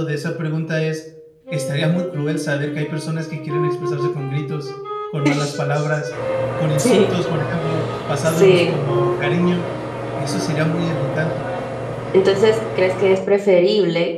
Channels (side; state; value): both; identical; correlation 1.00